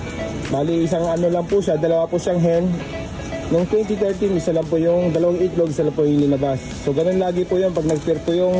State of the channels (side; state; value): both; identical; correlation 1.00